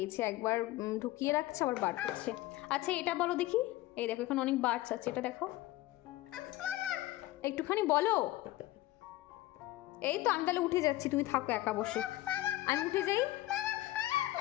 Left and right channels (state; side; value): quieter; right; 16.9 dB